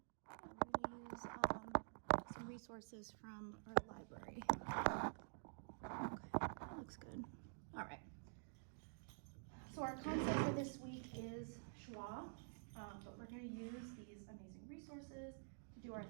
We're going to use some resources from our library. Okay, that looks good. All right. So our concept for this week is schwa, but we're going to use these amazing resources to do our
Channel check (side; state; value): left; silent; digital silence